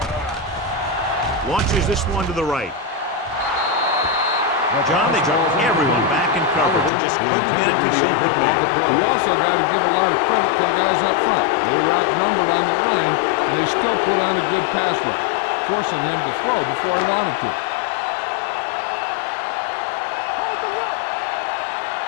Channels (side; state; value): right; drops out; at 6.9 s